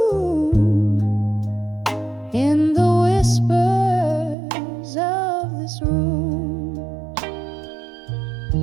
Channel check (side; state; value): left; drops out; at 4.4 s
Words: in the whispers of this room.